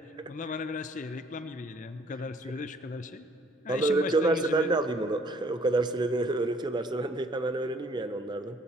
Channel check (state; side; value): normal; both; correlation 0.60